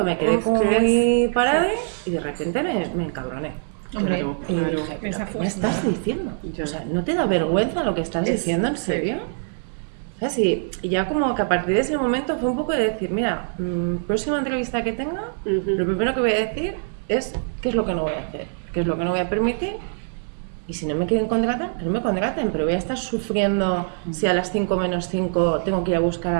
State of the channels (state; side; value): silent; left; digital silence